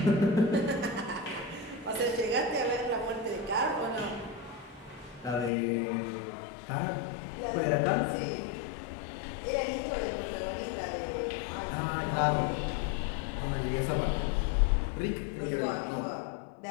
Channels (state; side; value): drops out; right; at 5.5 s